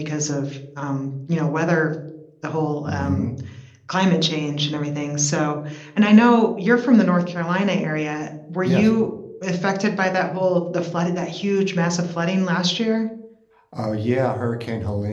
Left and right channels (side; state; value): both; identical; correlation 1.00